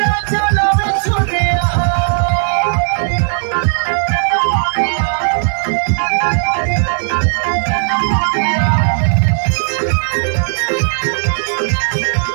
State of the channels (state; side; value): silent; left; digital silence